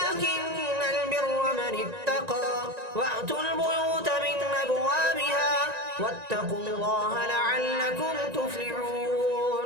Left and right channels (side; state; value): left; late; 1.9 ms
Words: البر من اتقى وأتوا البيوت من أبوابها واتقوا الله لعلكم